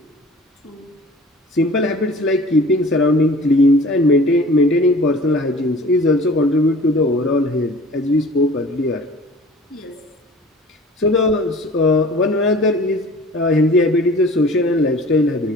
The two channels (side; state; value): both; normal; correlation 0.45